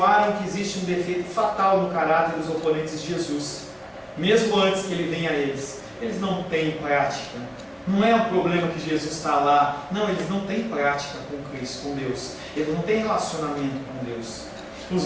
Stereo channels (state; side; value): identical; both; correlation 1.00